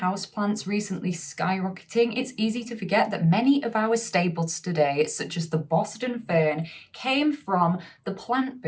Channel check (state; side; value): identical; both; correlation 1.00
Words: recently skyrocketing, it's easy to forget that many of our staples today, such as the Boston fern, came from the plant